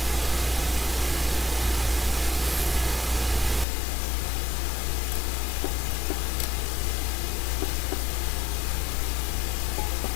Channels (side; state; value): right; drops out; at 3.7 s